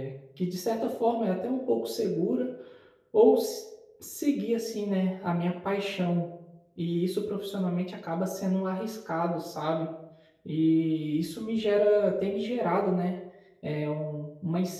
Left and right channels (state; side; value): identical; both; correlation 1.00